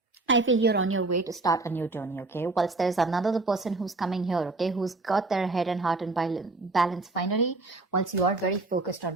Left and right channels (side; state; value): left; quieter; 3.3 dB